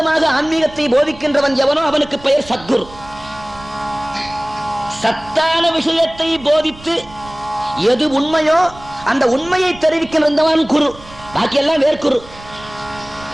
ஆன்மீகத்தை போதிக்கின்றவன் எவனோ அவனுக்கு பெயர் சத்குரு. சத்தான விஷயத்தை போதித்து எது உண்மையோ அந்த உண்மையை தெரிவிக்கின்றவன் குரு. பாக்கியெல்லாம் வேர்க்குரு.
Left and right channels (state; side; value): noise; right; rumble, 20 dB below the sound